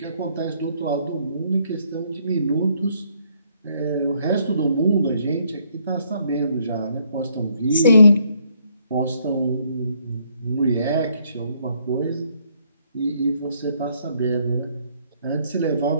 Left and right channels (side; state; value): both; inverted; correlation -0.69